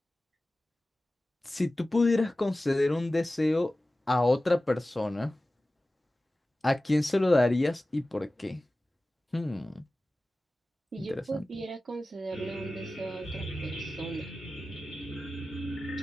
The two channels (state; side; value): normal; both; correlation 0.96